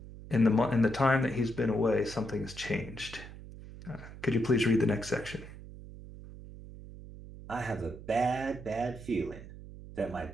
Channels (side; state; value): right; noise; hum, 14 dB below the sound